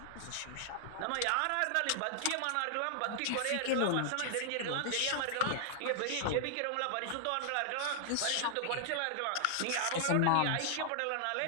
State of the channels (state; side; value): different; both; correlation -0.01